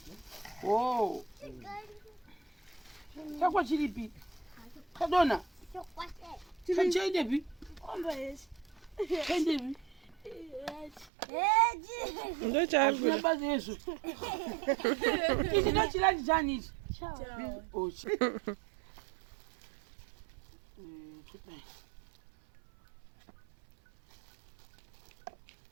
wow chakwa chiripi kadona chaitepi chaitepi ndo chaari basa yesu ichi ndo chilandi chani ichi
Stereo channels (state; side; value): drops out; left; at 11.1 s